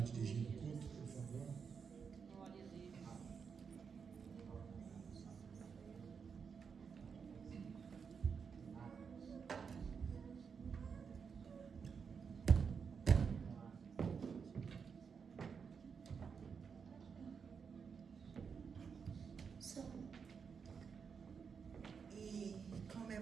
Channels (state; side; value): quieter; left; 6.1 dB